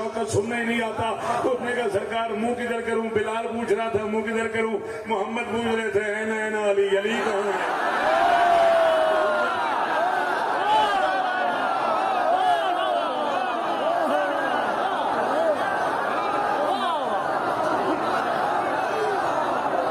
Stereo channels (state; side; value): identical; both; correlation 1.00